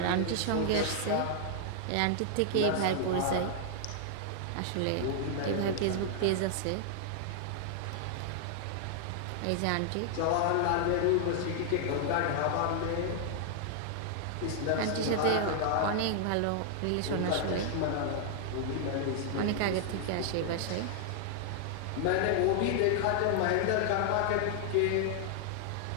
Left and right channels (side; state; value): both; different; correlation 0.00